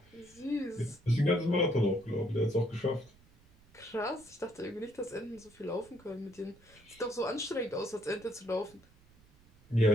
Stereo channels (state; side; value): noise; right; rumble, 27 dB below the sound